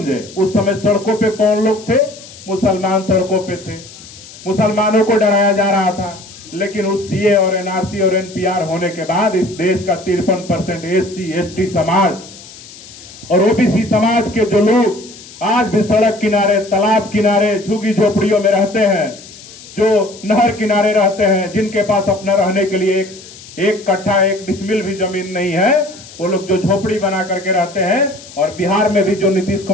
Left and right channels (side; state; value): left; noise; hiss, 18 dB below the sound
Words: उस समय सड़कों पे कौन लोग थे? मुसलमान सड़कों पे थे, मुसलमानों को डराया जा रहा था। लेकिन उस सीए और एनआरसी और एनपीआर होने के बाद इस देश का 53% एससी एसटी समाज और ओबीसी समाज के जो लोग आज भी सड़क किनारे, तालाब किनारे, झुग्गी झोपड़ियों में रहते हैं, जो नहर किनारे रहते हैं, जिनके पास अपना रहने के लिए एक कट्ठा एक डिसमिल भी जमीन नहीं है, वो लोग जो झोपड़ी बना करके रहते हैं। और बिहार में भी जो नीतीश